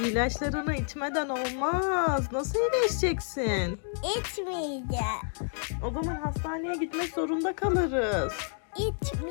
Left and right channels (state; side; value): silent; right; 58 dB below the other